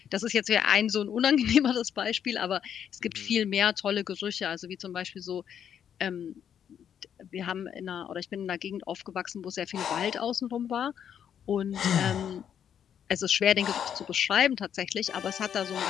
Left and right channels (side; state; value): right; quieter; 8.8 dB